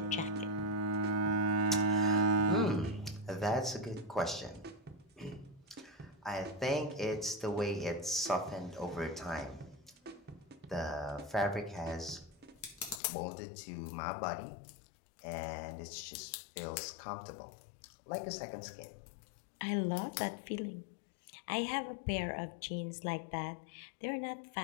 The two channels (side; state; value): right; drops out; at 13.0 s